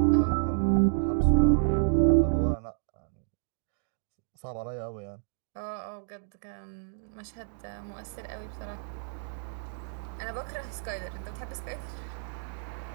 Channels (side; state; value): left; silent; digital silence